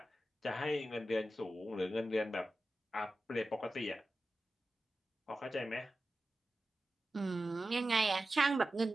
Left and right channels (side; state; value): both; normal; correlation 0.93